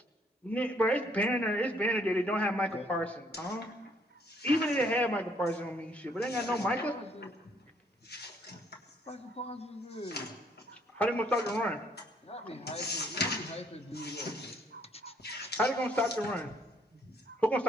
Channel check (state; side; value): normal; both; correlation 0.66